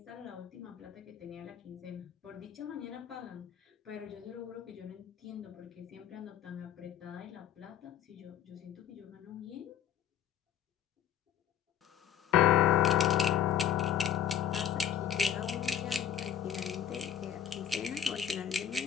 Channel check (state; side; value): quieter; right; 9.6 dB